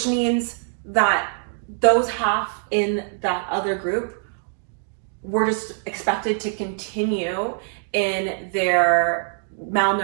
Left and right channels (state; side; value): silent; left; digital silence